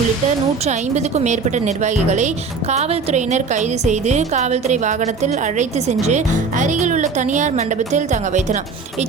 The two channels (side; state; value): left; quieter; 4.7 dB